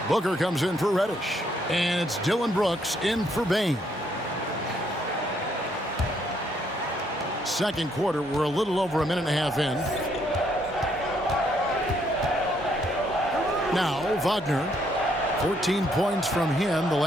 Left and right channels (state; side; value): normal; both; correlation 0.71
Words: Booker comes in for Reddish. And it's Dylan Brooks in for Bain. Second quarter, we're a little over a minute and a half in. Now, Wagner. 14 points from him the